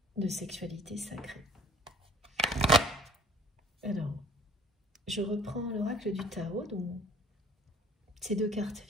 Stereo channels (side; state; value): both; normal; correlation 0.52